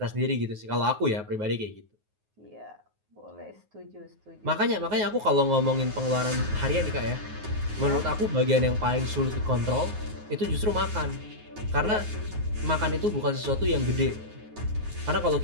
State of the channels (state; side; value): late; left; 9.5 ms